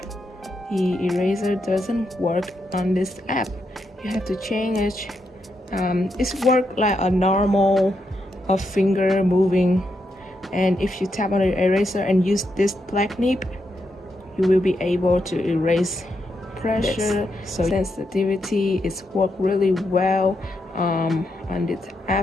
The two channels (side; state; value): both; normal; correlation 0.82